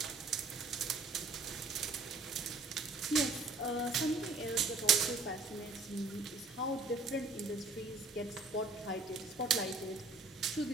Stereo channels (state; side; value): quieter; left; 3.7 dB